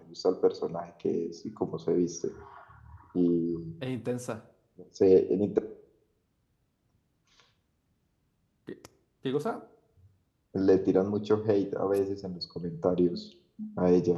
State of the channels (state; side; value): identical; both; correlation 1.00